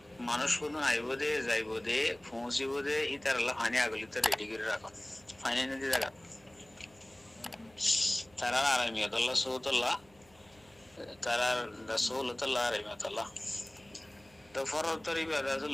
মানুষ কোন আইবো দে যাইবো দে পৌঁছিবো দে ইতারলা ফানি আগলিতে রেডি করে রাখো ফানি ne যে জায়গা তারা আরামিয়াতুল্লাহ সুবতুল্লাহ তারা রাসূলুল্লাহ রাহিমাতুল্লাহ তো ফরজ তরিবা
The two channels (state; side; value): noise; right; hum, 29 dB below the sound